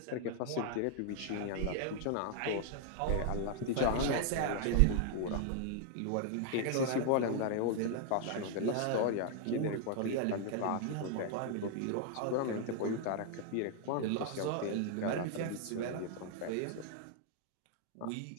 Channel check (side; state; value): both; different; correlation 0.00